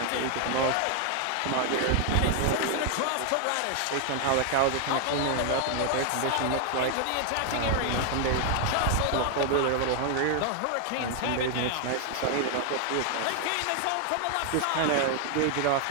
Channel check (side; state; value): both; different; correlation 0.00